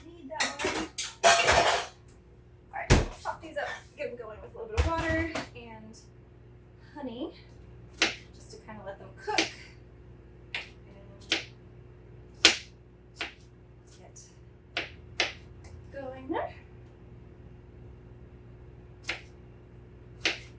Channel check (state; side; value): identical; both; correlation 1.00